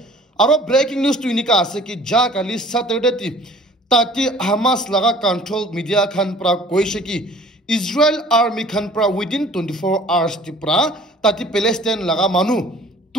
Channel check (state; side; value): normal; both; correlation 0.50